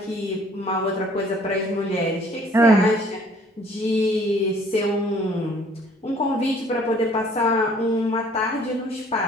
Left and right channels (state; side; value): normal; both; correlation 0.57